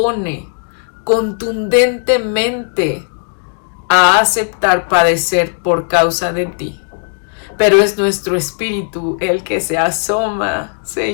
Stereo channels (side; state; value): right; silent; 67 dB below the other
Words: contundentemente a aceptar padecer por causa de ti. Pero es nuestro espíritu el que se asoma,